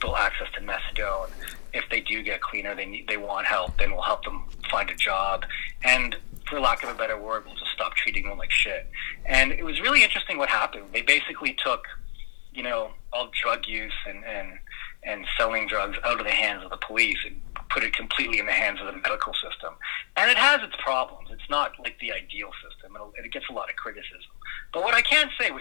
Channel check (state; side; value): silent; right; 60 dB below the other